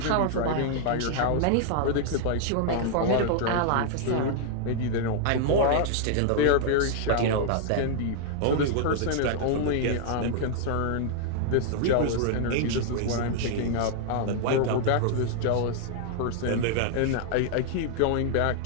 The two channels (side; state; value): both; different; correlation -0.01